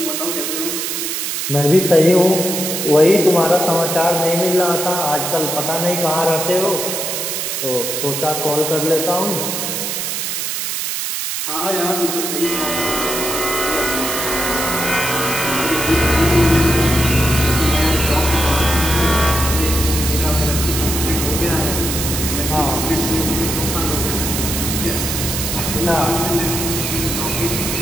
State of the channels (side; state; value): right; noise; hiss, 2 dB below the sound